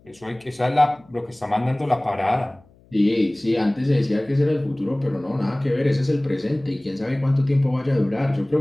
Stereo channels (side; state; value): left; noise; hum, 29 dB below the sound